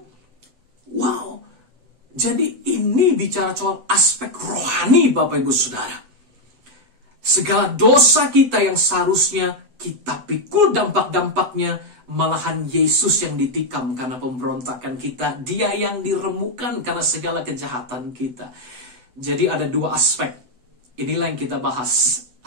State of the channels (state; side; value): late; left; 7.9 ms